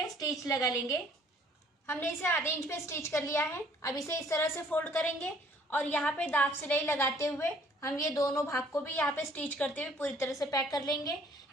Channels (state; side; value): normal; both; correlation 0.58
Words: स्टिच लगा लेंगे। हमने इसे आधे इंच पे स्टिच कर लिया है। अब इसे इस तरह से फोल्ड करेंगे और यहाँ पे दांत सिलाई लगाते हुए हम ये दोनों भाग को भी यहाँ पे स्टिच करते हुए पूरी तरह से पैक कर लेंगे।